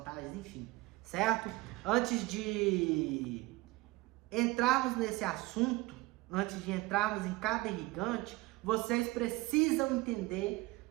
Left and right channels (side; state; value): left; quieter; 21.4 dB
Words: enfim, certo? Antes de entrarmos nesse assunto, antes de entrarmos em cada irrigante, vocês precisam entender